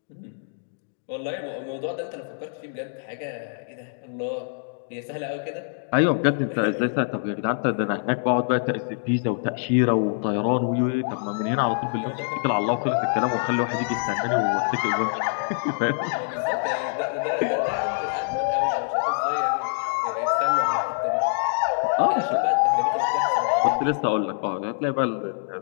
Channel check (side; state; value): right; silent; digital silence